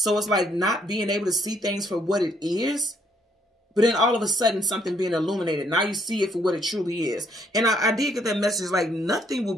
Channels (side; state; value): both; normal; correlation 0.69